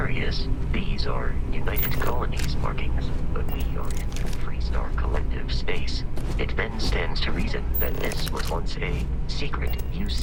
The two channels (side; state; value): both; identical; correlation 1.00